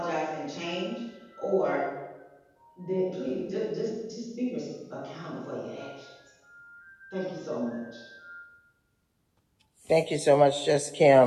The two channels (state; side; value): identical; both; correlation 1.00